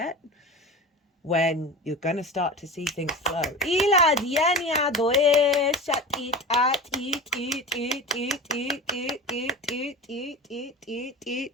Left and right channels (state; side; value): normal; both; correlation 0.30